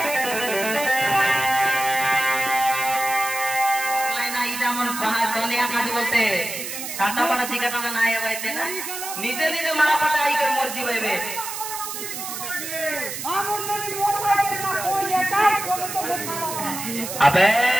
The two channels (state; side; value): noise; right; hiss, 7 dB below the sound